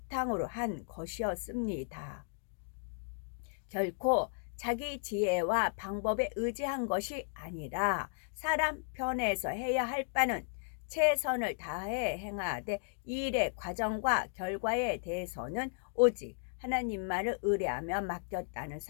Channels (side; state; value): right; silent; digital silence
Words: 한 것이었습니다. 결코 자기 지혜와 방법에 의지한 것이 아니라 사람 편에서 해야 할 바는 최선을 다해 행하되 이 일의 과정과 결과에 대해서는 오직 하나님만을 의뢰하며 맡겼다는